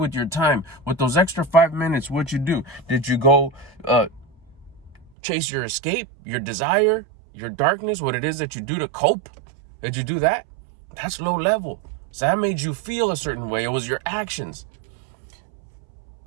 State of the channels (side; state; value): left; drops out; at 5.1 s